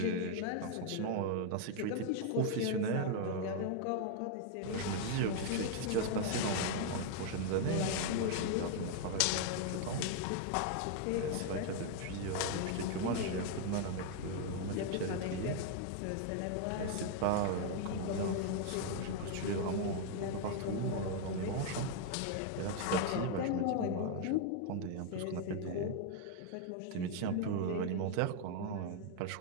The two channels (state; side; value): different; both; correlation 0.00